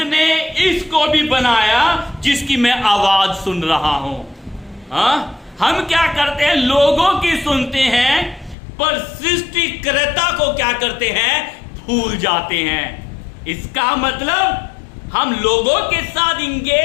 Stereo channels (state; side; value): drops out; right; at 8.6 s